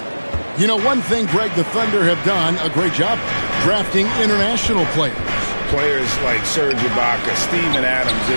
You know, one thing, Greg, the Thunder have done a great job drafting international players. Players like Serge Ibaka, Steven Adams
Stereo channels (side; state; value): both; inverted; correlation -1.00